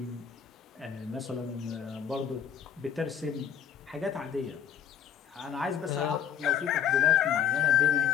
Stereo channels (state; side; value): quieter; right; 8.6 dB